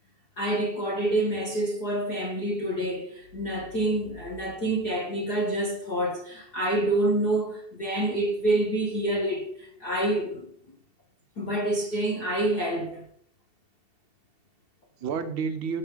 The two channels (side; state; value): right; late; 2.7 ms